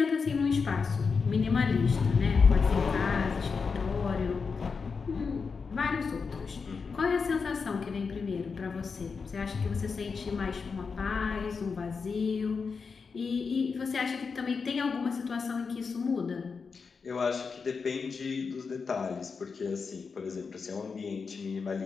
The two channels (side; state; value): right; quieter; 5.2 dB